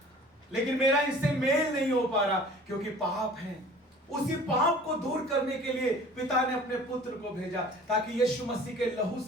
लेकिन मेरा इनसे मेल नहीं हो पा रहा क्योंकि पाप है। उसी पाप को दूर करने के लिए पिता ने अपने पुत्र को भेजा, ताकि यीशु मसीह के लहू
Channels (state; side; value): normal; both; correlation 0.47